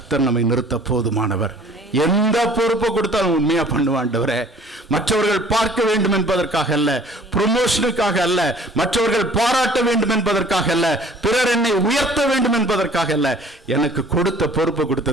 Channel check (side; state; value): both; normal; correlation 0.52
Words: நம்மை நிறுத்த போதுமானவர். எந்த பொறுப்பை கொடுத்தாலும் உண்மையா பண்ணுவாண்டவரே. மற்றவர்கள் பார்க்க வேண்டும் என்பதற்காக அல்ல, ப்ரொமோஷனுக்காக அல்ல, மற்றவர்கள் பாராட்ட வேண்டும் என்பதற்காக அல்ல, பிறர் என்னை உயர்த்த வேண்டும் என்பதற்காக அல்ல. எனக்கு கொடுத்த பொறுப்பை